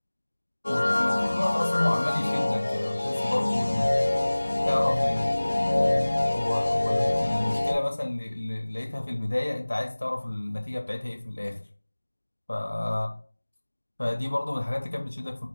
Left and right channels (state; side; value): inverted; both; correlation -1.00